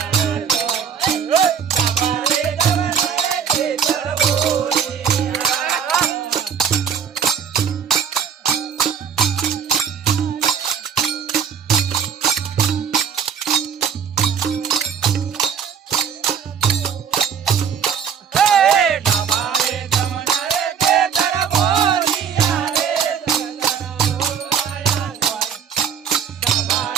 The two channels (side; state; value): left; quieter; 7.4 dB